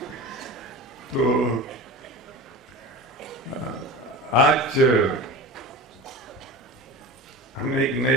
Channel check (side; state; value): both; normal; correlation 0.31